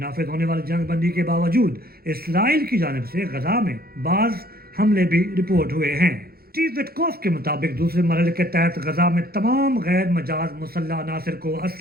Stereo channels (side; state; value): left; late; 0.44 ms